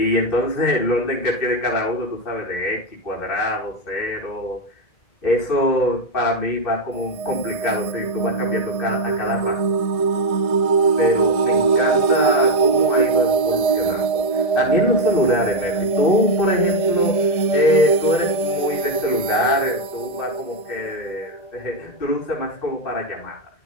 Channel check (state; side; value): late; right; 1.7 ms